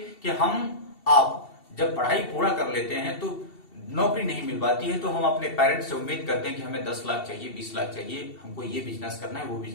कि आप जब पढ़ाई पूरा कर लेते हैं तो नौकरी नहीं मिल पाती है, तो हम अपने पेरेंट्स से उम्मीद करते हैं कि हमें 10 लाख चाहिए, 20 लाख चाहिए, हमको ये बिजनेस करना है, वो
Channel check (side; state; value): right; late; 2.7 ms